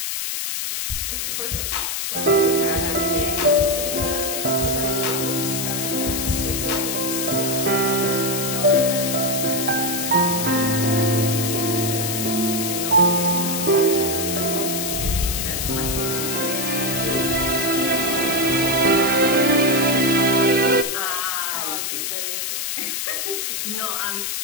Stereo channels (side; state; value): left; noise; hiss, 2 dB below the sound